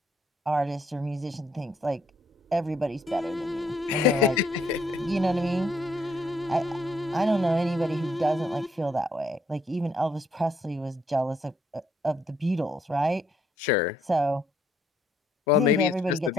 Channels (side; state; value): both; normal; correlation 0.70